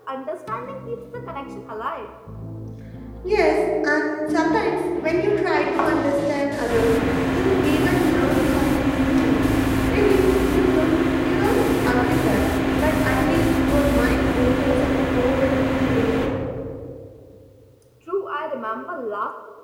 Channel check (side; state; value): both; identical; correlation 1.00